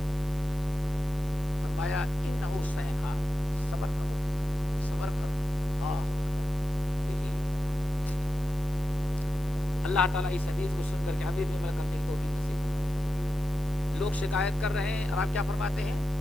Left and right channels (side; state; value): left; noise; hiss, 22 dB below the sound